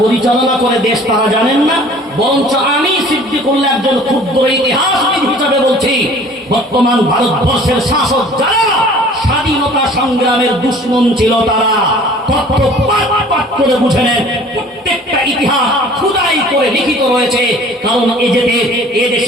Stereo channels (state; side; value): normal; both; correlation 0.49